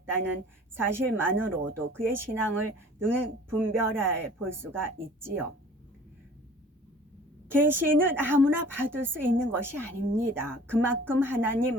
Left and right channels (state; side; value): normal; both; correlation 0.48